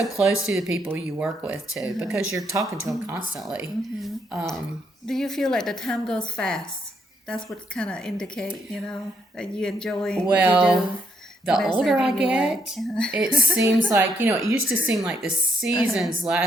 close to the people you work with too, because you're talking to them constantly. Do you feel like the time goes fast? That's what kind of indicate, you know, that you enjoy what you Well, do. the What I older said I anyway. get, it seems like, you know, it used to seem like the seasons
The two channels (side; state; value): both; normal; correlation 0.75